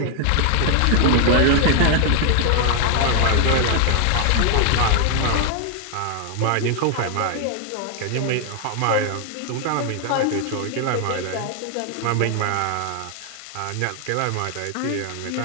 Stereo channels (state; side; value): different; both; correlation 0.00